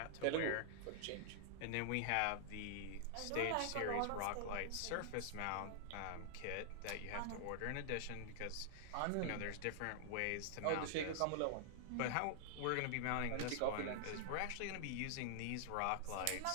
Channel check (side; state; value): both; different; correlation -0.01